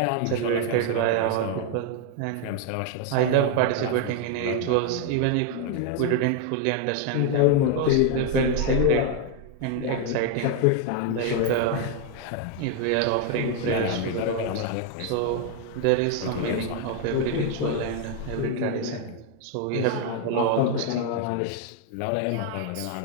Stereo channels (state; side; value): different; both; correlation 0.01